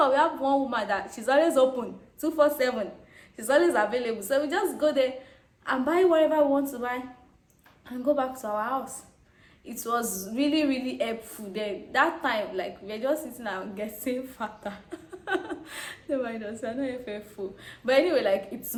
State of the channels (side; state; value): both; identical; correlation 1.00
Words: have one woman that she's always open 247, she's always available, so we just go there and buy whatever we want to buy and go back to our house. It was really, really helpful then. That time, like, we were just sitting and getting fatter. No mind us, we're not faithful. But anyway, like, it's